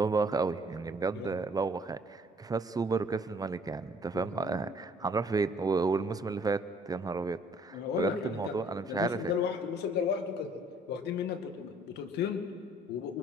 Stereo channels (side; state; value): both; normal; correlation 0.59